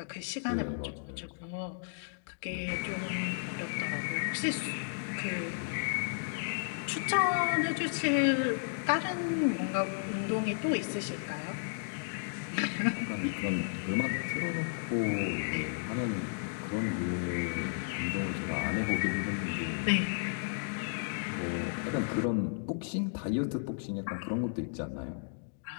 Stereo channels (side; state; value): right; silent; digital silence